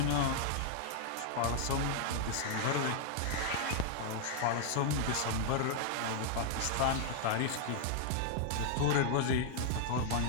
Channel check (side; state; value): both; different; correlation -0.01